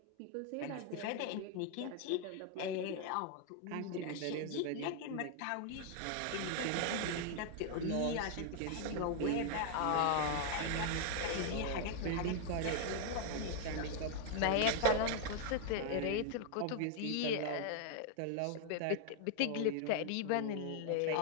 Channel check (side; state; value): both; different; correlation 0.00